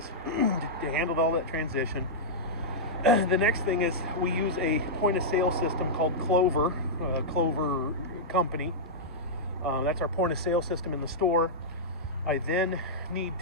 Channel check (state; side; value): normal; both; correlation -0.09